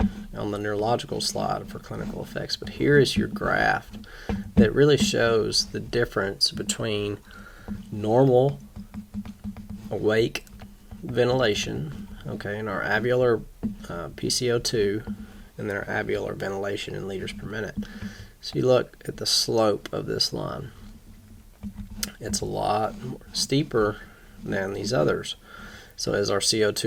on the neurological slide for clinical effects, but here is your graph that really shows the difference between normal awake ventilation, in our alveolar PCO2 and their alveolar ventilation in liters per minute. So you look at the slope of this line. It's a lot steeper than these others. So as our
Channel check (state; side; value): identical; both; correlation 1.00